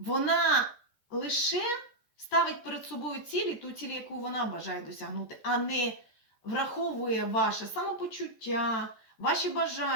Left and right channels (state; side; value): late; right; 13 ms